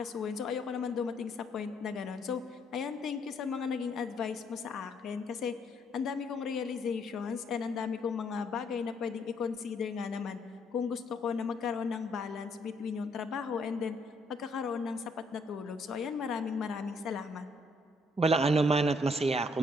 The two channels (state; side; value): normal; both; correlation 0.69